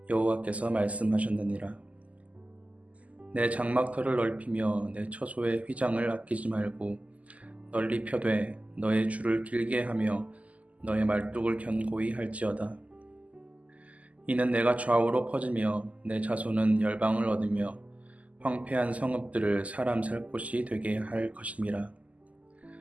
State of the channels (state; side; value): late; left; 0.071 ms